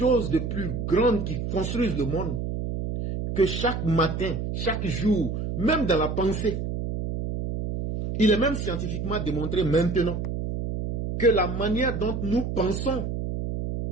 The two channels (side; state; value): right; noise; hum, 3 dB below the sound